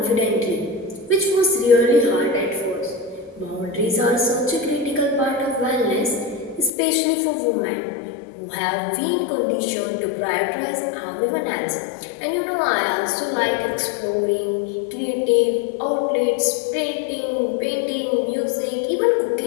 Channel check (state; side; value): drops out; right; at 6.7 s